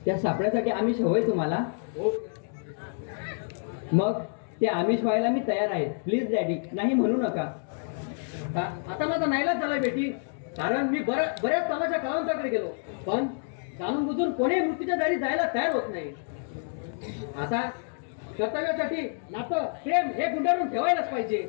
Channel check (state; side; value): silent; right; digital silence